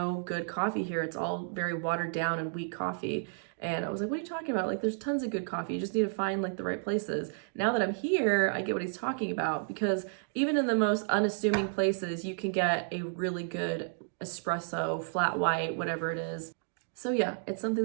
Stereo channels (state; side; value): silent; left; digital silence